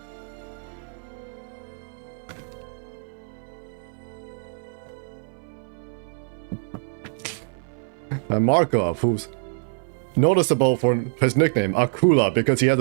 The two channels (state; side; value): silent; left; 59 dB below the other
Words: And Markov, who's noticeable for his nickname, Akula, because he has